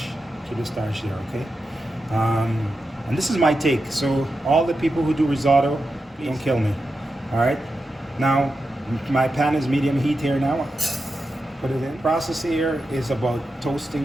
Keep the starch there, okay? And this is my take. So all the people who do risotto, don't kill me. All right? Now, my pan is medium heat here now. Put it in. The process here is about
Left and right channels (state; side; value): normal; both; correlation 0.89